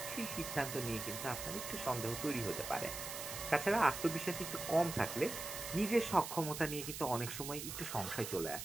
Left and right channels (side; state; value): right; noise; hiss, 7 dB below the sound